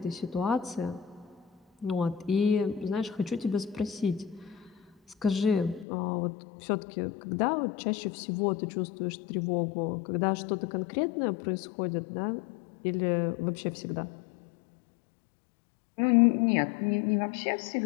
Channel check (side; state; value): right; drops out; at 5.9 s